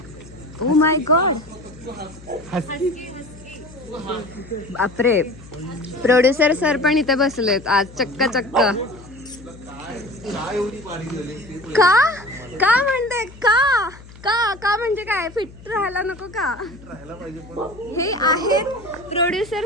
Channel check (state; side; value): noise; left; hum, 19 dB below the sound